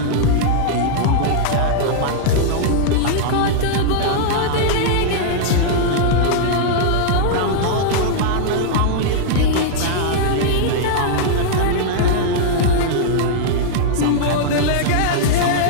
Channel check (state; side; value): different; both; correlation -0.01